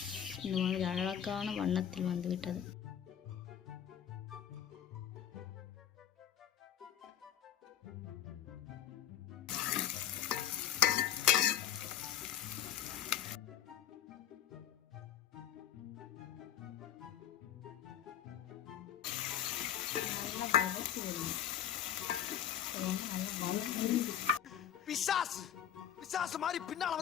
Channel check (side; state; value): right; quieter; 9.8 dB